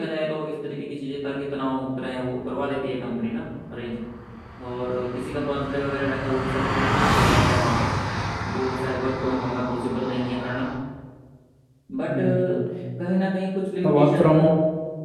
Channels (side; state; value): both; identical; correlation 1.00